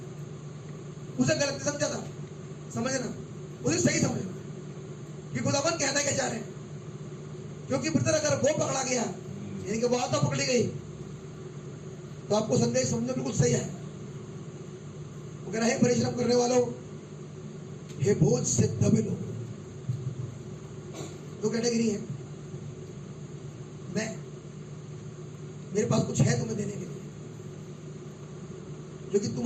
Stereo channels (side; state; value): both; identical; correlation 1.00